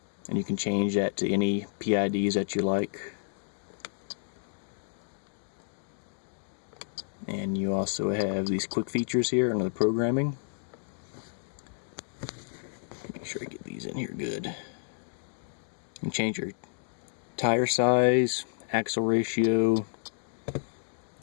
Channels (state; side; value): silent; right; digital silence